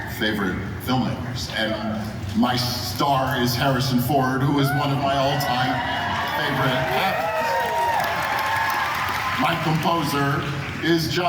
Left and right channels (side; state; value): both; identical; correlation 1.00